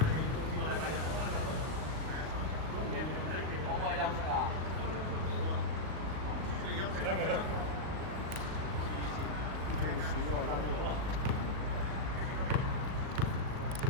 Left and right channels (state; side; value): late; left; 38 ms